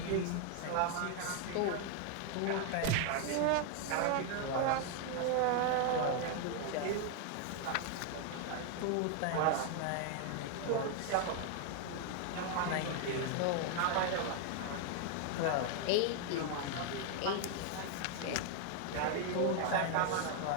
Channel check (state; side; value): different; both; correlation 0.00